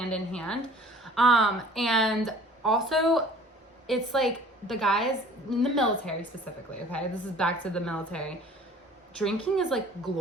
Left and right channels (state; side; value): normal; both; correlation 0.49